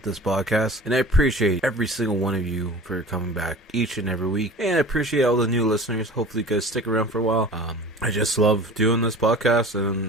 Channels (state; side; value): normal; both; correlation 0.41